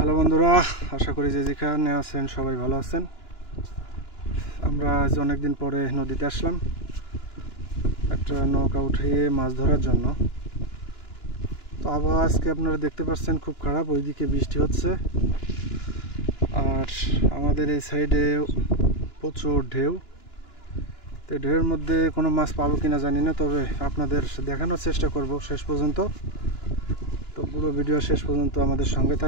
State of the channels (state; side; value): late; right; 2.9 ms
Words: হ্যালো বন্ধুরা, আশা করি যে যেখানে আছেন সবাই ভালো আছেন। আমরা আজ অনেকদিন পরে নদীতে আসলাম একটা নৌকা উঠিয়ে মাছ ধরার জন্য। তো আবহাওয়া আজকে আপনারা দেখতে পাচ্ছেন খুব খারাপ, ওইদিকে বৃষ্টি হচ্ছে আর আমাদের এই সাইডে প্রচুর ঢেউ। তো ঢেউয়ের মধ্যে কোনো মাছ পাবো কিনা জানি না, তবে আপনাদের দেখানোর চেষ্টা করব শেষ পর্যন্ত। তো পুরো ভিডিও শেষ পর্যন্ত আমাদের সঙ্গে